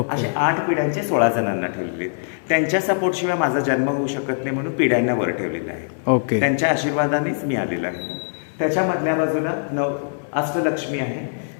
असे 8 पिढ्यांचे 16 जणांना ठेवलेले आहेत. त्यांच्या सपोर्ट शिवाय माझा जन्म होऊ शकत नाही म्हणून पिढ्यांना वर ठेवलेलं आहे. ओके. त्यांच्या आशीर्वादानेच मी आलेलो आहे. त्याच्या मधल्या बाजूला अष्टलक्ष्मी आहे.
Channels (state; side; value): silent; right; digital silence